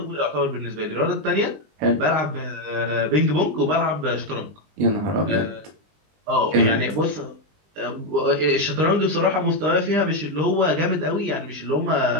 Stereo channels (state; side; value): late; left; 20 ms